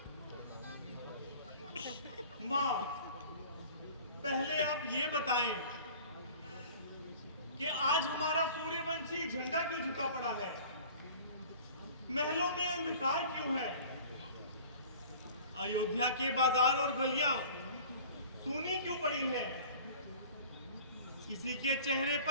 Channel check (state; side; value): inverted; both; correlation -0.44